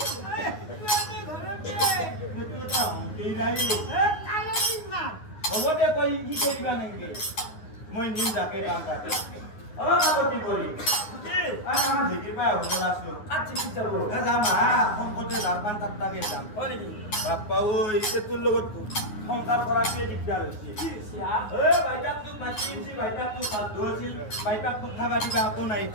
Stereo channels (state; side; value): late; right; 9.6 ms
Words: সেইটো এটা হ'ব দে তই শিকাই দিবা নেকি মই নিম যাকে কাম কাটে কাকো কি কৰি আমাৰ ঢেঁকীৰ পৰা হোটেল আছো যাম শংকতে জাৰপান তাত্তাকে যাম বাপ্পা ঐ তোৰ লগত সংসাৰ কৰাটোৱে দিগদাৰ হৈছে বাইপাক তোক মাতি আনিছিল বাইপাক তোক বাধ্য আছিল বাইপাক তোক খাবা দিবা একো নাই